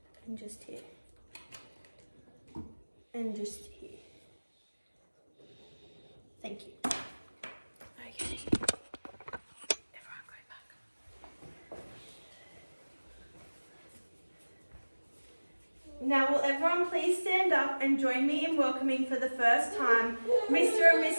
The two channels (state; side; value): inverted; both; correlation -1.00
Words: And just here. And just here. Thank you. Okay. Everyone go back. Now will everyone please stand up and join me in welcoming for the first time Mr. and